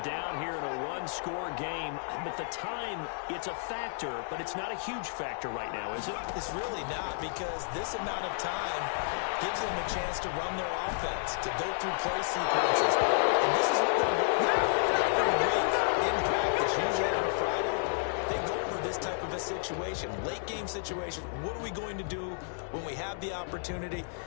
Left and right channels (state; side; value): silent; right; digital silence